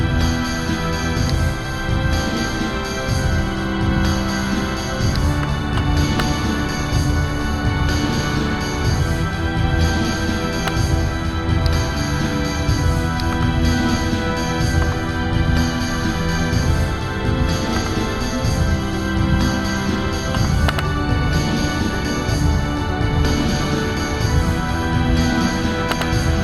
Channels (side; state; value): both; identical; correlation 1.00